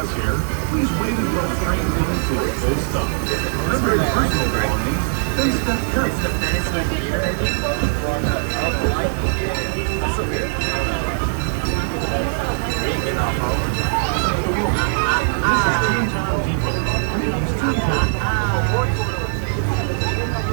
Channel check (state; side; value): silent; left; digital silence